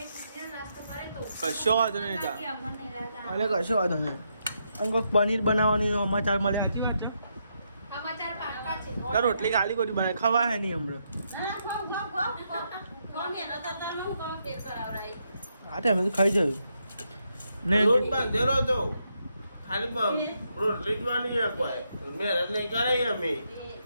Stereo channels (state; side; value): inverted; both; correlation -0.80